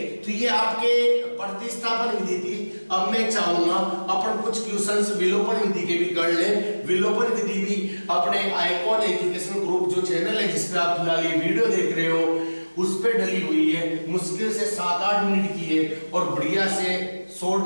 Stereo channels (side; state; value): both; inverted; correlation -1.00